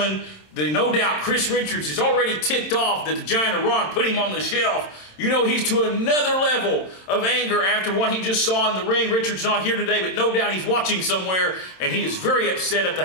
no doubt Chris Richards is already ticked off that the Giant Arawn put him on the shelf. You know he's to another level of anger after what he just saw in the ring. Richards not here today, but no doubt he's watching somewhere, and he is very upset at the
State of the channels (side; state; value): right; late; 27 ms